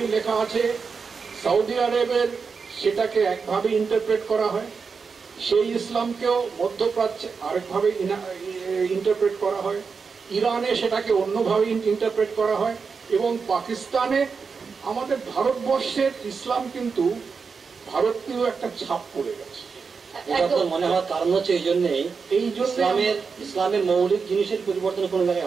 লেখা আছে সৌদি আরবের সেটাকে একভাবে ইন্টারপ্রেট করা হয়, সেই ইসলামকেও মধ্যপ্রাচ্যে আরেকভাবে ইন্টারপ্রেট করা হয়, ইরানে সেটাকে অন্যভাবে ইন্টারপ্রেট করা হয়, এবং পাকিস্তানে আমাদের ভারতবর্ষের ইসলাম কিন্তু ভারতীয় একটা ছাপ পড়ে গেছে। এটা তো মনে হওয়ার কারণ হচ্ছে এই জন্যই ইসলামের মৌলিক জিনিসের পরিবর্তন কোনো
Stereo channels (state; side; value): quieter; left; 5.3 dB